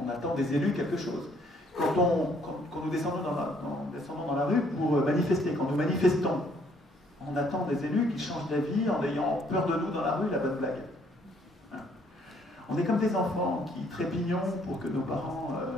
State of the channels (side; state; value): both; normal; correlation 0.65